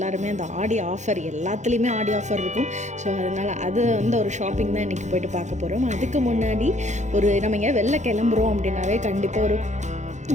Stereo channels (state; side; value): late; left; 0.34 ms